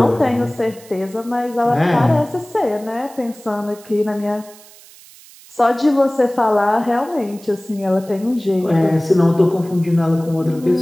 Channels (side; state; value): right; noise; hiss, 22 dB below the sound